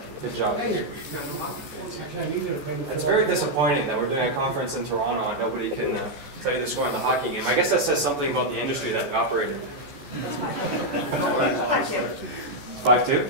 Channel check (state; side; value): late; left; 14 ms